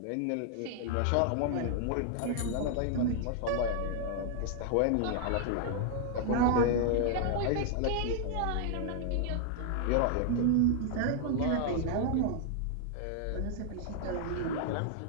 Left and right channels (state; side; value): different; both; correlation -0.01